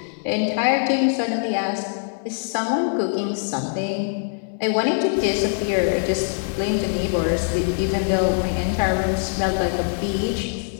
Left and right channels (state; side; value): silent; right; 64 dB below the other